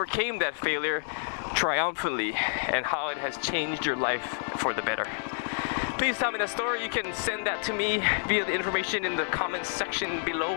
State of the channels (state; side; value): silent; right; digital silence